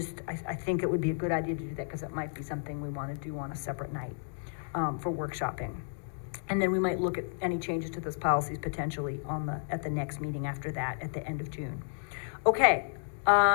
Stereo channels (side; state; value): right; silent; digital silence